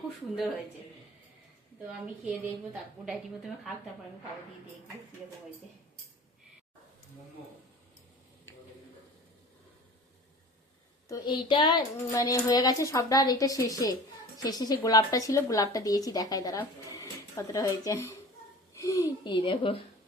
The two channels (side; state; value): both; normal; correlation 0.41